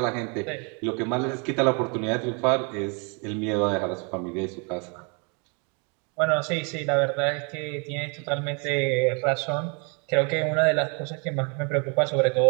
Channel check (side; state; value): left; quieter; 34.8 dB